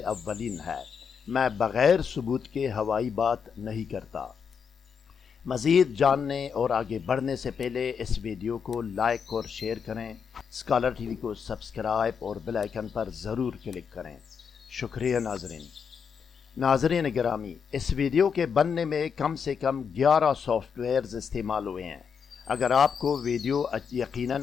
اولین ہے۔ میں بغیر ثبوت کے ہوائی بات نہیں کرتا۔ مزید جاننے اور آگے بڑھنے سے پہلے اس ویڈیو کو لائک اور شیئر کریں، اسکالر ٹی وی کو سبسکرائب اور بیل آئیکن پر ضرور کلک کریں۔ شکریہ ناظرین گرامی، اس ویڈیو کے بننے میں کم سے کم 11 سافٹ ویئرز استعمال ہوئے ہیں۔ اگر آپ کو ویڈیو یقیناً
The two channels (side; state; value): right; quieter; 6.6 dB